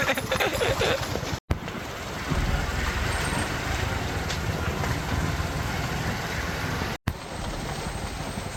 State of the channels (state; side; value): identical; both; correlation 1.00